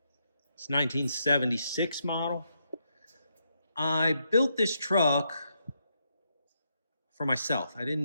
It's 1976 model. I built this truck for myself. I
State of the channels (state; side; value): inverted; both; correlation -0.80